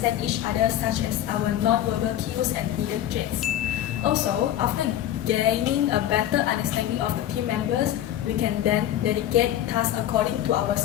each other, such as our non-verbal cues and hidden traits. Also, after gaining a better understanding of the team members, we can then dedicate tasks according to our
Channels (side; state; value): right; quieter; 11.9 dB